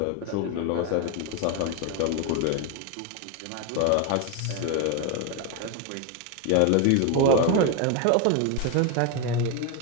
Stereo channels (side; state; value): both; different; correlation 0.02